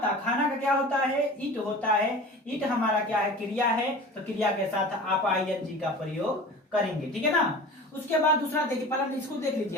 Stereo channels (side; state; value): both; normal; correlation 0.37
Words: खाना का क्या होता है, इट होता है। इट हमारा क्या है, क्रिया है, तो क्रिया के साथ आप आईएनजी का प्रयोग करेंगे, ठीक है ना। उसके बाद दूसरा देखिए, पहले इसको देख लीजिए